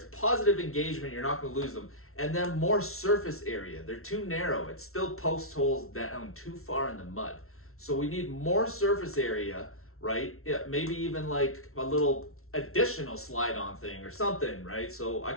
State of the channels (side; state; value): right; late; 0.62 ms